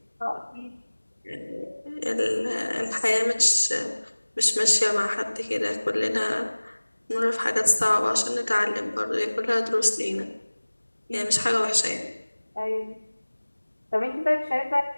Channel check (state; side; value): inverted; both; correlation -1.00